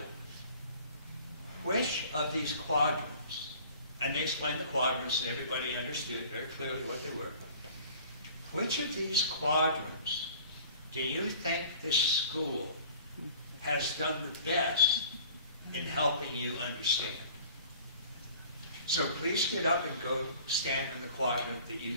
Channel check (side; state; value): both; inverted; correlation -0.48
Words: which of these quadrants, and they explained the quadrants and everybody understood very clearly what they were, which of these quadrants do you think this school has done the best in helping you understand? So please get up and go stand in the quadrant that